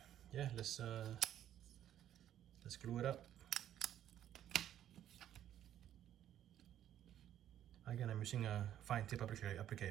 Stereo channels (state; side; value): quieter; left; 11.2 dB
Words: yeah, let's glue it up. Again, I'm using a fine tip